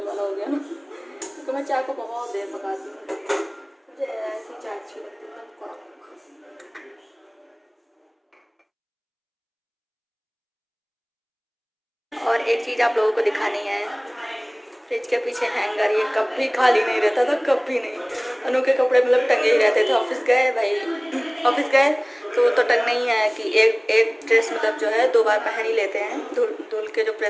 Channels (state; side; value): identical; both; correlation 1.00